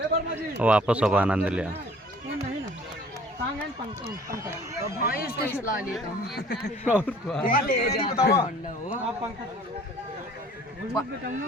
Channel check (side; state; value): both; normal; correlation 0.52